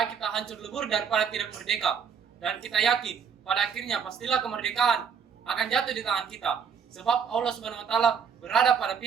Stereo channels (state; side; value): quieter; left; 6.8 dB